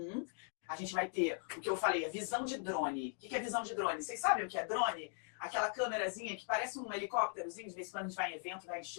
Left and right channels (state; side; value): silent; right; 51 dB below the other